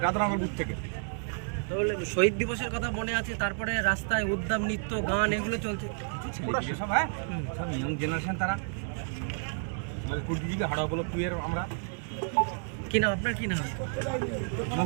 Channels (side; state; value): left; silent; 57 dB below the other